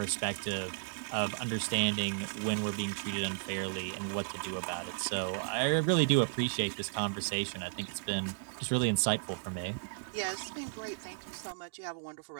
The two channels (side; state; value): left; silent; digital silence